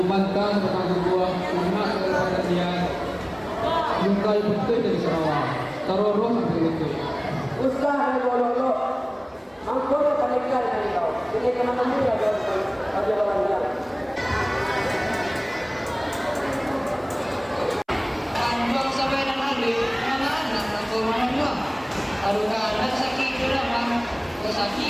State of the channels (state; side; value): identical; both; correlation 1.00